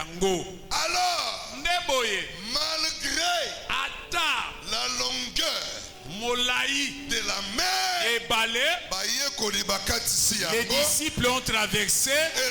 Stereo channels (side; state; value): both; identical; correlation 1.00